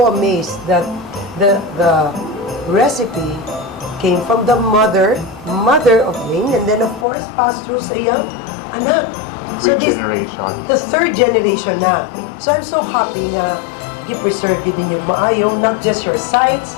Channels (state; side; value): drops out; right; at 7.1 s